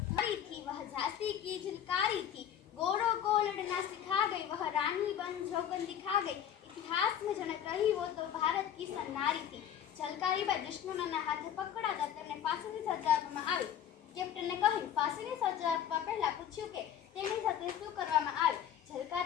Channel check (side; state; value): right; quieter; 9.6 dB